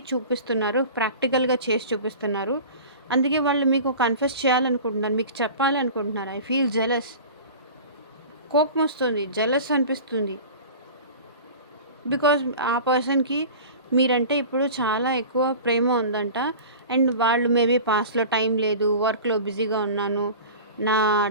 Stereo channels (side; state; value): both; inverted; correlation -0.37